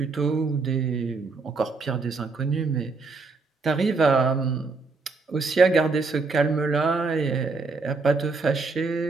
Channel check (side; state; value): left; quieter; 4.0 dB